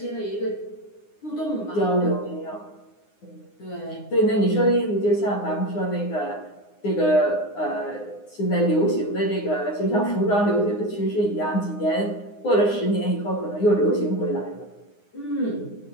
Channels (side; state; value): right; late; 9.7 ms